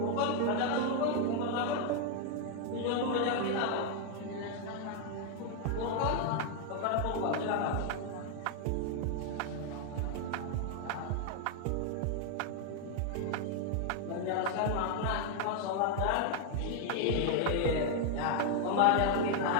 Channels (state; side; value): different; both; correlation 0.00